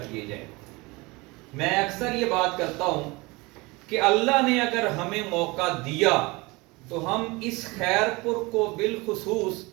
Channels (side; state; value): left; quieter; 24.2 dB